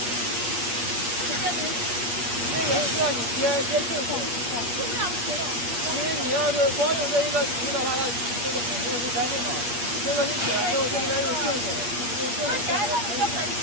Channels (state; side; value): late; left; 8.0 ms